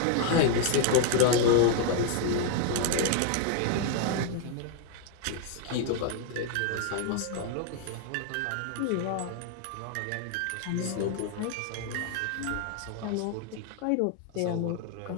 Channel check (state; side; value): different; both; correlation 0.00